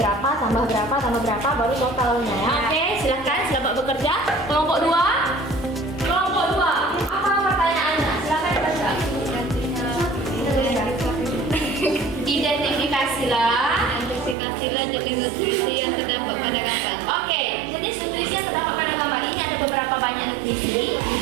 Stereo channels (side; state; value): left; drops out; at 14.4 s